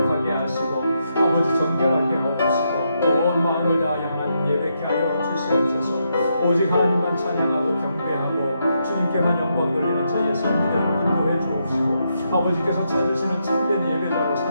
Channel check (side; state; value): both; inverted; correlation -0.81